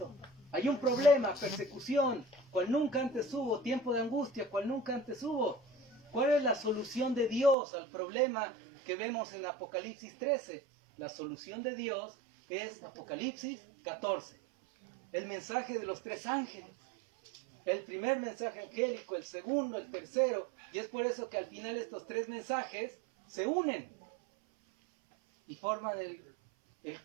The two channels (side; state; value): left; drops out; at 7.6 s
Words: Hay un problema, persecución, cual nunca antes hubo, tiempo de angustia, cual nunca antes hubo. ¿Cuál es la solución de Dios al problema que vemos en Apocalipsis 13? La solución de Dios es Apocalipsis 14. El mensaje de los 3 ángeles. El primer mensaje angélico, el segundo, el tercero. Y es por eso que al final estos 3 mensajes se unen y forman el